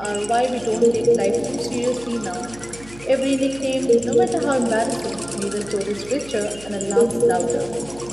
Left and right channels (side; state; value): right; noise; hum, 20 dB below the sound